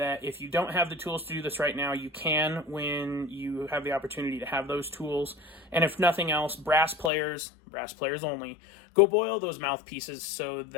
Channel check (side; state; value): right; drops out; at 7.1 s